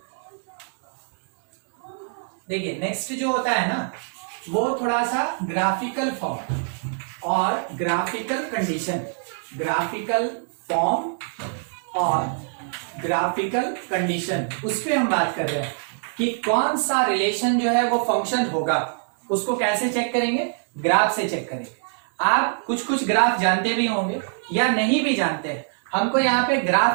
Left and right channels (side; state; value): left; silent; digital silence